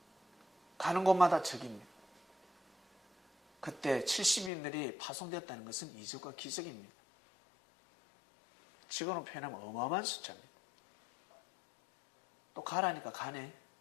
가는 곳마다 적입니다. 그때 70인들이 파송되었다는 것은 이적과 기적입니다. 지금으로 표현하면 어마어마한 숫자입니다. 또 가라니까 가네.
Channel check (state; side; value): drops out; right; at 4.5 s